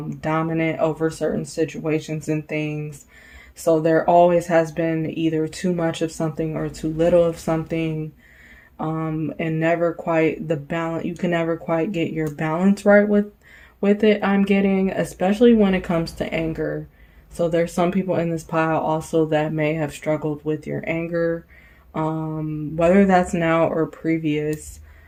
dominant over certain situations and things. So there always has been either too much of something or too little of something, and never quite the balance. You can never quite get your balance right with it. I'm getting, especially when it comes to anger. So there's some people in this pile also that may have struggled with your anger, whether that's now or previous.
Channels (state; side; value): identical; both; correlation 1.00